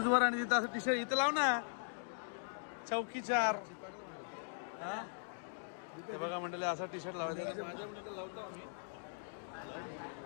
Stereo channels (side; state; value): right; silent; digital silence